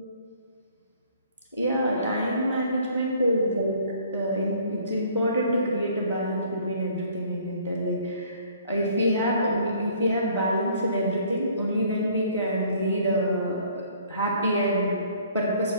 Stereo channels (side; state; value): both; inverted; correlation -0.57